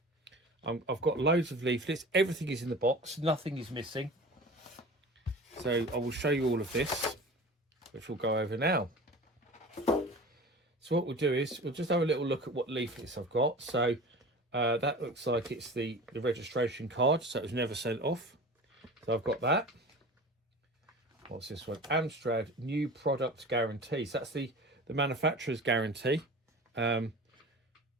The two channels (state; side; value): normal; both; correlation 0.37